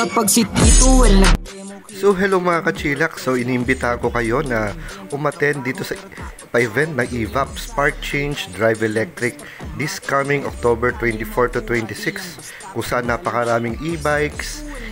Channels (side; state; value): both; identical; correlation 1.00